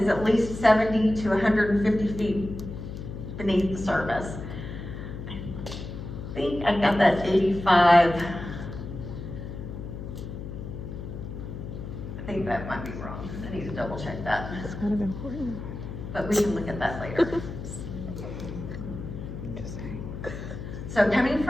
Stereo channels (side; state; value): left; noise; hum, 8 dB below the sound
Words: at least 70 to 150 feet beneath the surface. I think I got that 85. I think that might be wrong. I need to double check that. It's kind of important. But we can look at that later. So coming